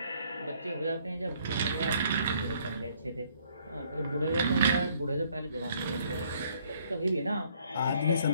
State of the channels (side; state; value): both; inverted; correlation -0.64